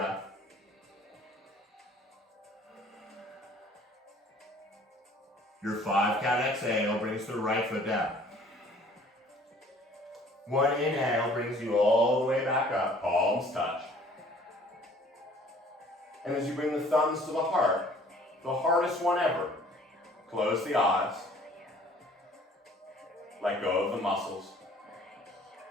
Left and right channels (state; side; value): normal; both; correlation 0.54